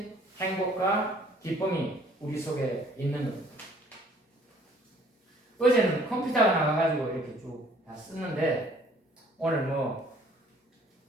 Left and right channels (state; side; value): normal; both; correlation 0.58